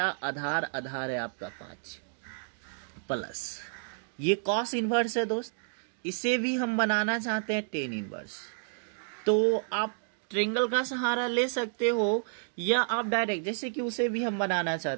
आधार है आपका 5 प्लस ये कॉस इनवर्स है दोस्त। इसे भी हम बनाना चाहते हैं टेन इनवर्स, तो आप ट्रायंगल का सहारा ले सकते हो, या आप डायरेक्ट, जैसे कि उसे भी हम बनाना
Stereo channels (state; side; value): silent; left; digital silence